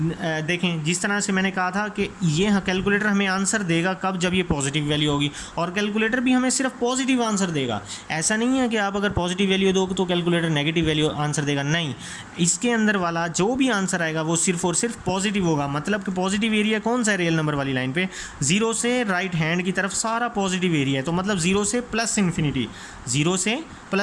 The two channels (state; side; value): identical; both; correlation 1.00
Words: जिस तरह से मैंने कहा था कि ये कैलकुलेटर हमें आंसर देगा कब, जब ये पॉजिटिव वैल्यू होगी। और कैलकुलेटर भी हमें सिर्फ पॉजिटिव आंसर देगा। ऐसा नहीं है कि आप अगर पॉजिटिव वैल्यू दो तो कैलकुलेटर नेगेटिव वैल्यू आंसर देगा, नहीं। इसके अंदर वाला जो भी आंसर आएगा वो सिर्फ और सिर्फ पॉजिटिव होगा। मतलब कि पॉजिटिव एरिया कौन सा है रियल नंबर वाली लाइन पे, 0 से राइट हैंड की तरफ सारा पॉजिटिव एरिया है। तो मतलब 0 से प्लस इन्फिनिटी, 0 से